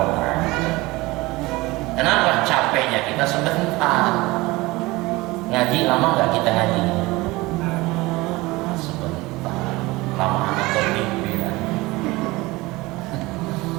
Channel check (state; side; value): quieter; left; 21.3 dB